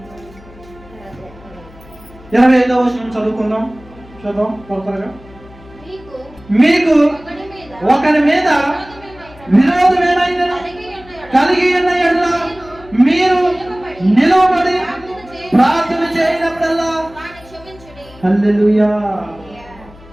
25వ వచనం చదువుకుందాం. చూద్దాం త్వరగా. మీకు ఒకరి మీద విరోధమేమైనా కలిగి ఉన్న యెడల మీరు నిలవబడి ప్రార్థన చేయనప్పుడల్లా హల్లెలూయా.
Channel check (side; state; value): left; noise; hum, 22 dB below the sound